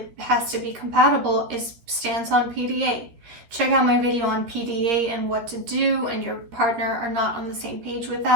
has to be compatible is stance on PDA. Check out my video on PDA and what to do, and your partner are not on the same page with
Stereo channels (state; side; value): late; left; 13 ms